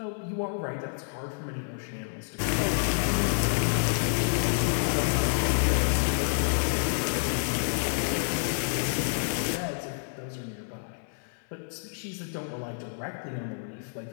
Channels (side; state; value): right; silent; 59 dB below the other